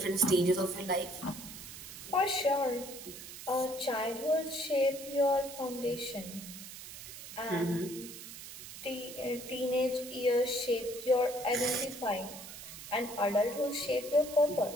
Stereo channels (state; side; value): noise; right; hiss, 12 dB below the sound